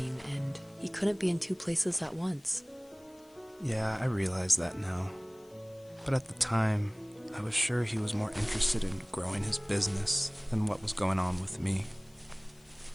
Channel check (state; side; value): noise; left; hiss, 29 dB below the sound